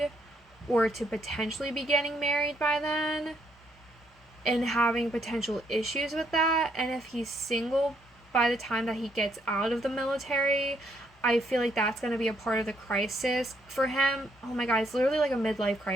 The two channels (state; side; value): normal; both; correlation 0.72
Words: or to potentially be getting married by then and having potential issues with that. And if he's single by the time that he gets out of the military, I feel like that's going to be a part of the crisis for him. Oh my god, it's literally like a midlife